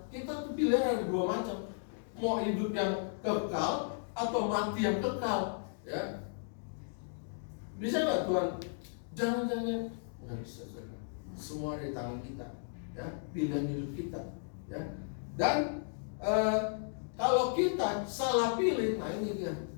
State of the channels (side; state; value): right; silent; digital silence